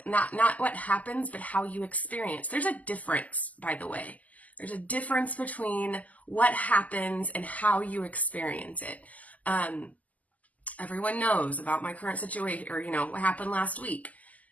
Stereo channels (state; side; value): late; right; 0.076 ms